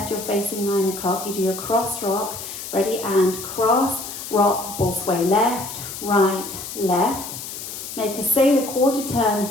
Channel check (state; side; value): noise; left; hiss, 9 dB below the sound